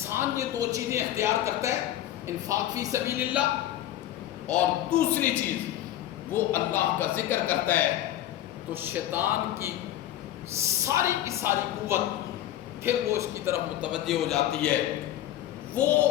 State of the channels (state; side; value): quieter; right; 12.8 dB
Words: یہ 2 چیزیں اختیار کرتا ہے، انفاق فی سبیل اللہ اور دوسری چیز وہ اللہ کا ذکر کرتا ہے، تو شیطان کی ساری کی ساری قوت پھر وہ اس کی طرف متوجہ ہو جاتی ہے۔ وہ